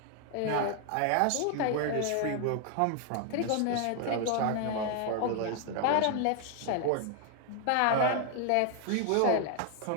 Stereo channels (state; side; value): different; both; correlation 0.00